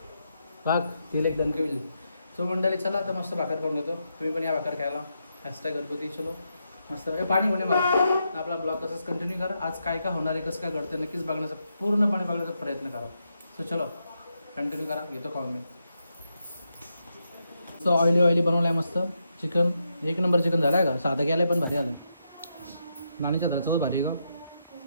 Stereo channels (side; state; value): both; inverted; correlation -0.83